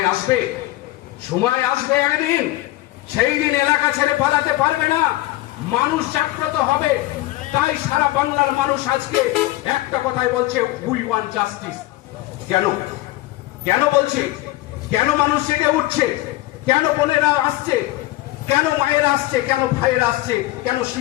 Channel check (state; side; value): quieter; right; 17.7 dB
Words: সময় আসবে একদিন, সেই দিন এলাকা ছেড়ে পালাতে পারবে না, মানুষ জাগ্রত হবে। তাই সারা বাংলার মানুষ আজকে একটা কথাই বলছে, উই ওয়ান্ট জাস্টিস। কেন বলছে? কেন মানুষ জেগে উঠছে? কেন বোনেরা আসছে? কেন মায়েরা আসছে? কেন ভাইয়েরা আসছে? কেন